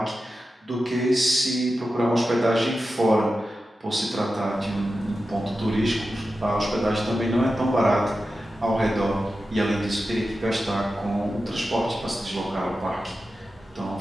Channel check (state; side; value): normal; both; correlation 0.92